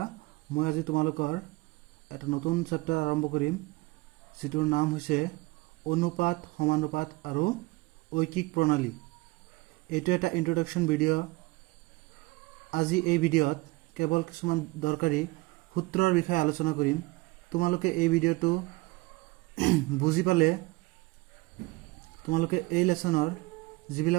মই আজি তোমালোকৰ এটা নতুন চেপ্টাৰ আৰম্ভ কৰিম, যিটোৰ নাম হৈছে অনুপাত, সমানুপাত আৰু ঐকিক প্ৰণালী। এইটো এটা ইন্ট্ৰডাকশ্যন ভিডিঅ'। আজি এই ভিডিঅ'ত কেৱল কিছুমান দৰকাৰী সূত্ৰৰ বিষয়ে আলোচনা কৰিম। তোমালোকে এই ভিডিঅ'টো বুজি পালে তোমালোকে এই লেসনৰ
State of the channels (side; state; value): left; quieter; 23.2 dB